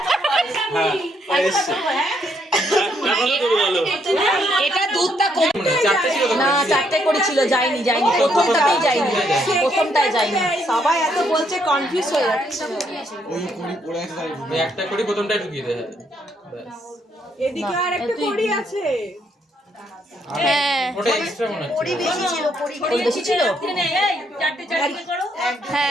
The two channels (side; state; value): both; normal; correlation 0.73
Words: এটা দুধটা কম চারটে ছিল তো? না, 4টে করেছিল, যায়নি প্রথমটাতেই যায়নি, প্রথমটায় যায়নি। সবাই এত বলছে কনফিউজ হয়ে যাচ্ছে। ওই একটা করি প্রথমটাই ঢুকিয়ে দেয় ব্যাস। এদিকে আর একটা কড়ি আছে। হ্যাঁ ওটা এক্সট্রা মনে হচ্ছে। কড়ি বেশি ছিল।